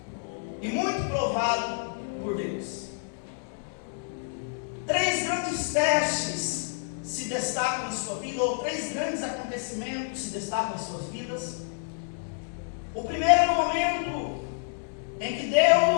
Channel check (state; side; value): silent; right; digital silence